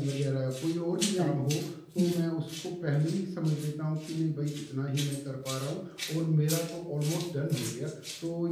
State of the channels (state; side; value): identical; both; correlation 1.00